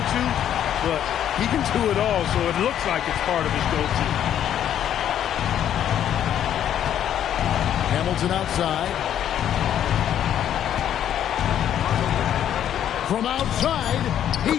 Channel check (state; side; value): quieter; right; 10.3 dB